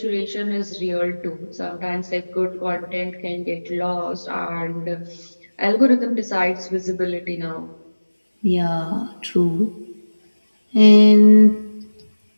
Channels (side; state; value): both; inverted; correlation -1.00